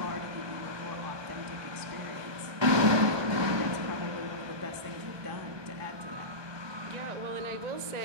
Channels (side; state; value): left; late; 1.2 ms